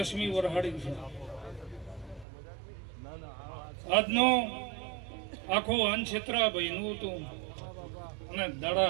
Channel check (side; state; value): left; drops out; at 2.2 s